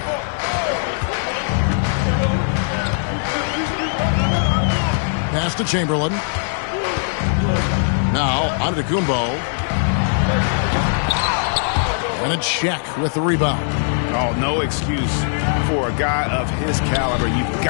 Pass to Chamberlain. Now, Antetokounmpo. And it's Shaq with the rebound. Oh, no excuse for a guy of his caliber. You've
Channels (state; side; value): silent; right; digital silence